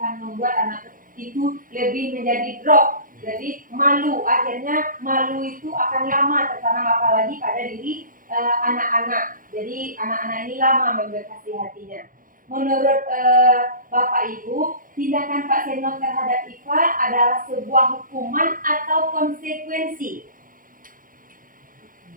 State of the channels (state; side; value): late; left; 0.40 ms